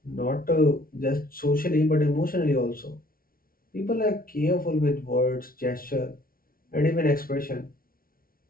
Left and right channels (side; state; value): right; late; 0.43 ms